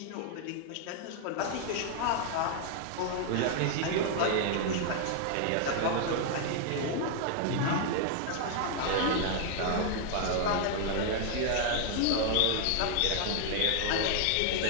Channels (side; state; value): both; different; correlation 0.00